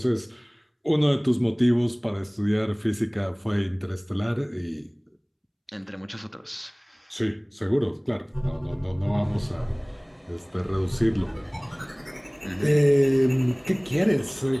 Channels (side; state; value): both; identical; correlation 1.00